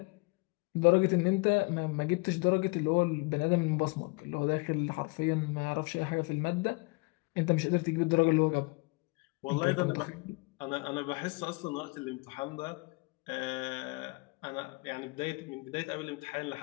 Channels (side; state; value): right; quieter; 28.2 dB